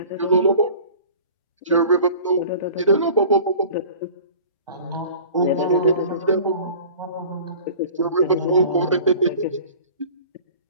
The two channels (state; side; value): inverted; both; correlation -0.44